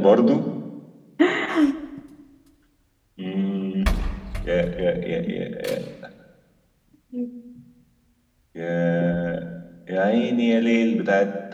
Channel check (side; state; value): both; identical; correlation 1.00